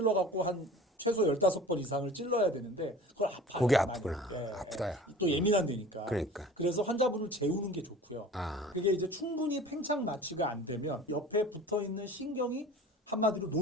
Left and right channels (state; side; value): normal; both; correlation 0.41